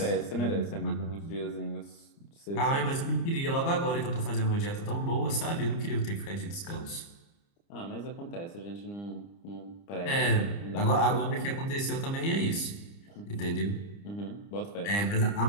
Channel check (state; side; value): late; right; 30 ms